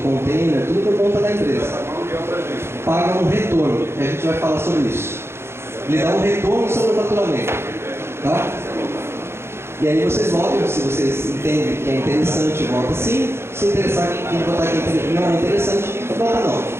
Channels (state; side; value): late; left; 0.12 ms